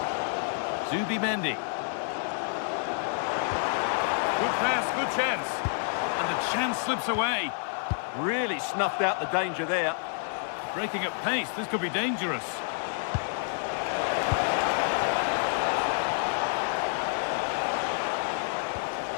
Zubimendi. Good pass, good chance. And the chance slips away. Really snuffed out the danger there. Breaking at pace, this could be dangerous.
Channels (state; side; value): silent; right; digital silence